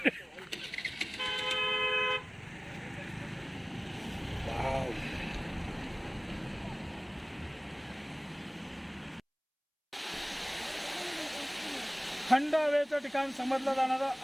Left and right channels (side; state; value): both; identical; correlation 1.00